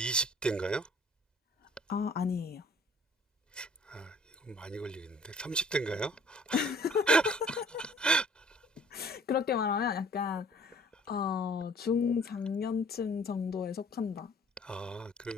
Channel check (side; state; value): both; normal; correlation 0.54